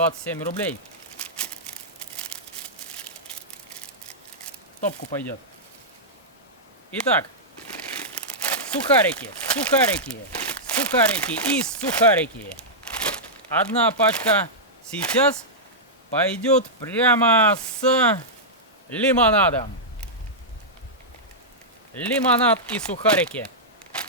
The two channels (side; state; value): both; normal; correlation -0.11